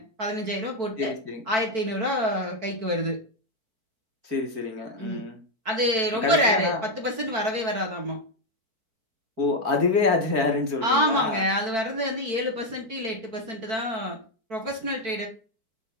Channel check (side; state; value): left; late; 4.5 ms